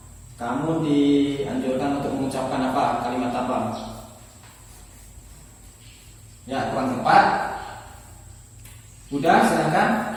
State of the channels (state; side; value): identical; both; correlation 1.00